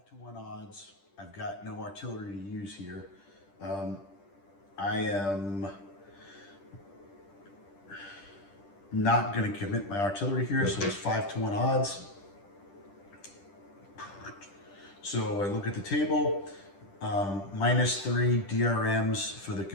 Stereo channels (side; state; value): right; late; 10 ms